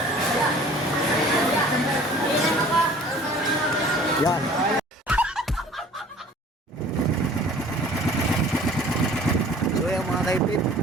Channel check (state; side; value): normal; both; correlation 0.49